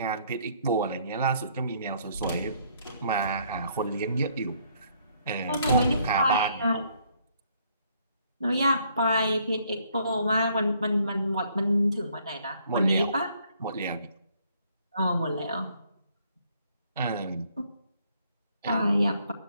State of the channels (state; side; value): inverted; both; correlation -0.66